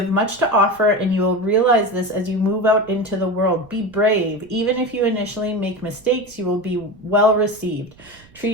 much to offer, and you will realize this as you move out into the world. Be brave. Even if you initially make mistakes, you will be well received.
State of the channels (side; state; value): right; noise; rumble, 27 dB below the sound